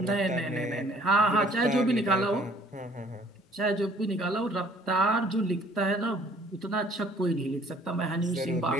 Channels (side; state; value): both; normal; correlation 0.57